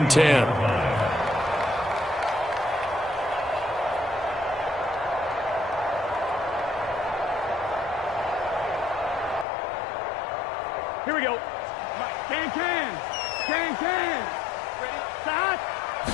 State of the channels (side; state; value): right; drops out; at 9.5 s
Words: 10. Here we go. Can.